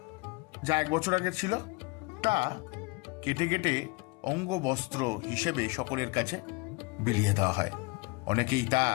যা 1 বছর আগে ছিল তা কেটে কেটে অঙ্গ বস্ত্র হিসেবে সকলের কাছে বিলিয়ে দেওয়া হয়। অনেকেই তা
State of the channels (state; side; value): quieter; right; 27.0 dB